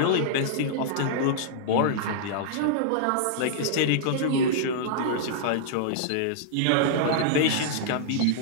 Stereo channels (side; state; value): both; different; correlation -0.02